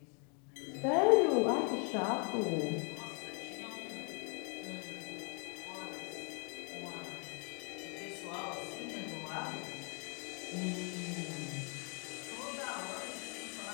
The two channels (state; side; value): quieter; right; 38.0 dB